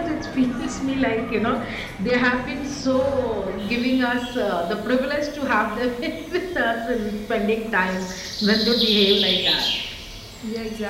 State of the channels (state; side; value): identical; both; correlation 1.00